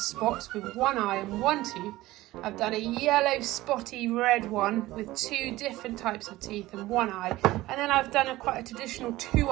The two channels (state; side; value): quieter; left; 17.5 dB